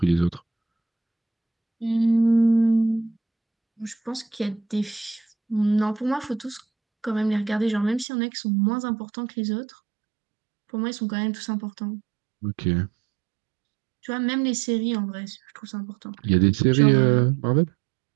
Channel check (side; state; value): left; drops out; at 8.1 s